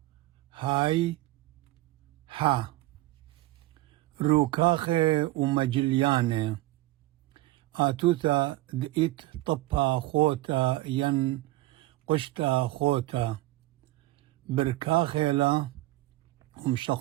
هاي ها روكاخي ومجلياني آتوتا دئت طبا خوتا ين قشتا خوتا بركاخيلا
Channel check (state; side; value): quieter; left; 18.2 dB